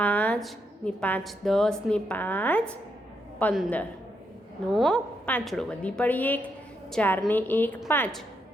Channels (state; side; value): normal; both; correlation 0.79